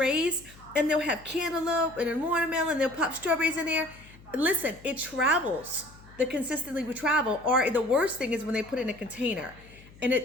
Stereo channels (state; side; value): noise; left; hum, 22 dB below the sound